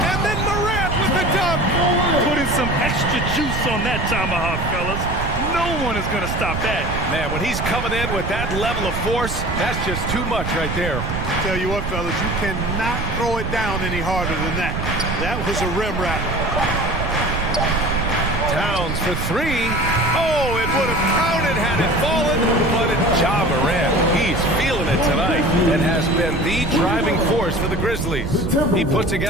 then Morant with the dunk. Putting some extra juice on that tomahawk, fellas. No one is going to stop that. Man, when he's coming in with that level of force, that's just too much right there. Tell you what, fellas, you cannot throw it down any harder than that. That was a rim wrap. Towns for 3. Oh, it would have counted had it fallen, but it's Ja Morant. He's feeling it tonight and has been the driving force for the Grizzlies. He put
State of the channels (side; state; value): right; noise; rumble, 4 dB below the sound